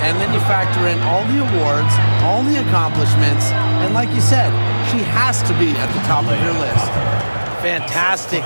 And then you factor in all the awards, all the accomplishments, and like you said, she has to be at the top of your list. Fantastic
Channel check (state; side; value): inverted; both; correlation -1.00